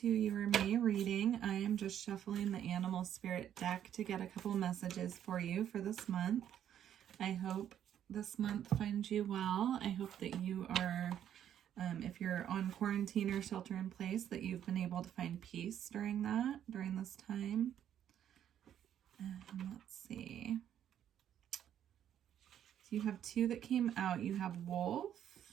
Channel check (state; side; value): quieter; left; 10.1 dB